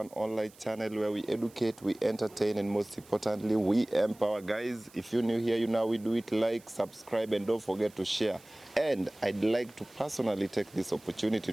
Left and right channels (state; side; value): noise; right; hiss, 25 dB below the sound